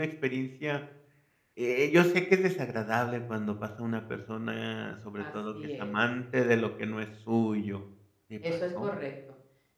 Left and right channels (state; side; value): identical; both; correlation 1.00